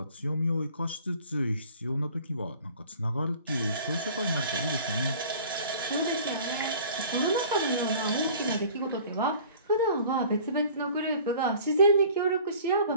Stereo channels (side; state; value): both; inverted; correlation -0.48